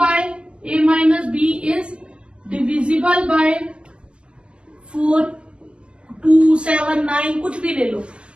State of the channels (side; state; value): left; late; 0.051 ms